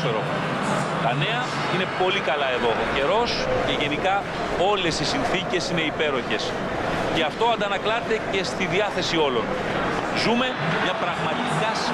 Τα νέα είναι πολύ καλά εδώ. Ο καιρός και γενικά όλες οι συνθήκες είναι υπέροχες. Και αυτό αντανακλάται και στη διάθεση όλων. Ζούμε μια πραγματικά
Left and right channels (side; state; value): both; identical; correlation 1.00